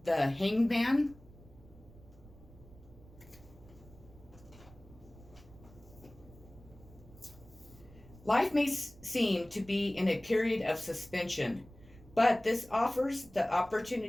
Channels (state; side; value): noise; right; rumble, 22 dB below the sound